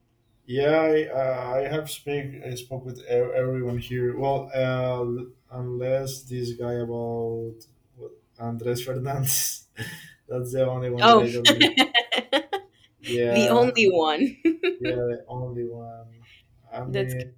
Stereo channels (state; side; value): identical; both; correlation 1.00